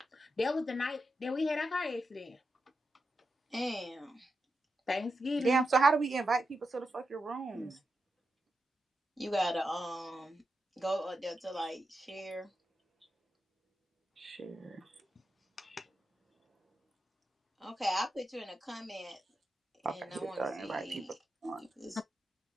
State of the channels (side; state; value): both; normal; correlation 0.88